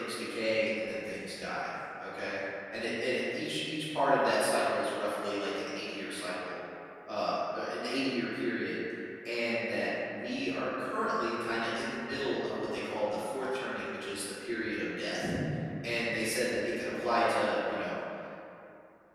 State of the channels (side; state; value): both; identical; correlation 1.00